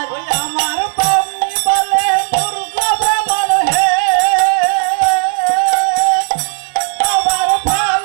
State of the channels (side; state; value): left; silent; digital silence